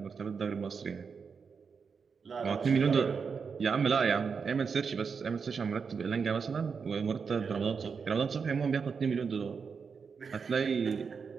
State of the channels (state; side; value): quieter; left; 5.7 dB